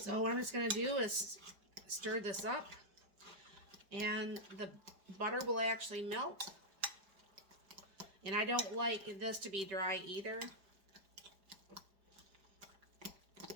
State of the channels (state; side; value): late; left; 5.2 ms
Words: what I'm just going to do is stir this up, and the butter will actually melt. And I don't like this to be dry either.